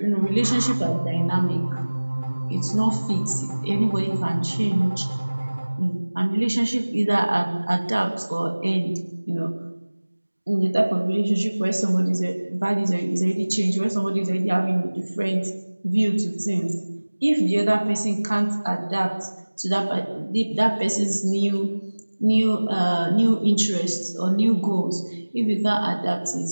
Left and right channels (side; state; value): both; inverted; correlation -1.00